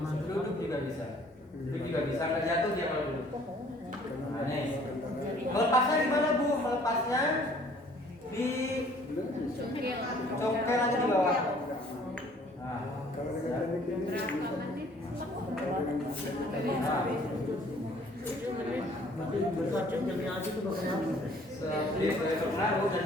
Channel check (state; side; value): normal; both; correlation 0.57